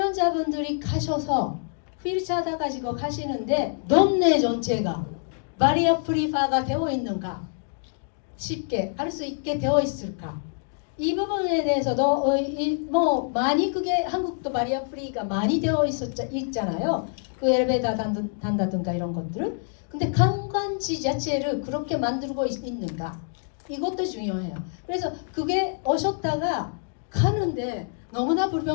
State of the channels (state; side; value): silent; right; 61 dB below the other